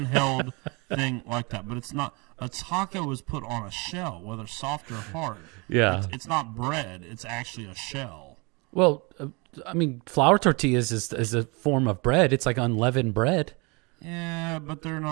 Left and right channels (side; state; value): left; quieter; 28.7 dB